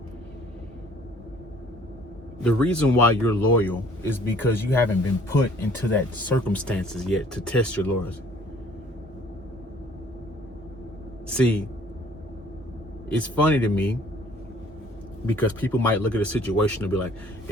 The reason why you're loyal is because you haven't been put into that circumstances yet to test your loyalty. See, it's funny to me Because people might look at a situation and be like,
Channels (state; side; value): normal; both; correlation 0.56